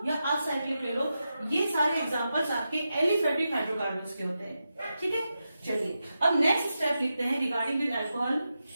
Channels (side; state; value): both; inverted; correlation -0.89